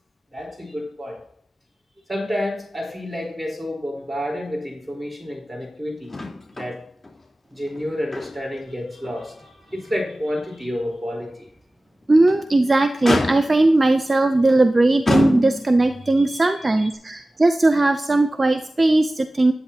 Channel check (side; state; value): both; normal; correlation 0.97